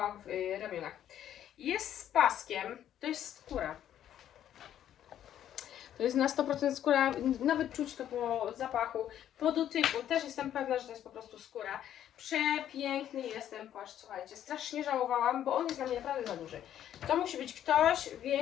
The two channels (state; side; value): quieter; right; 10.8 dB